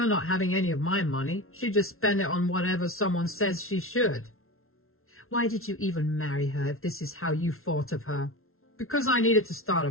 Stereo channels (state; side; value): late; right; 0.62 ms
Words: not having any of my money. She just spend it on whatever someone says she should." "Why did you even marry her if this is how you thought of her?" "Because I needed to start a